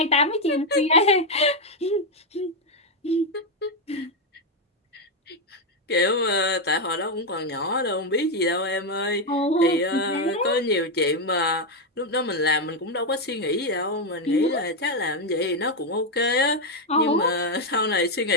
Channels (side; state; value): both; normal; correlation 0.04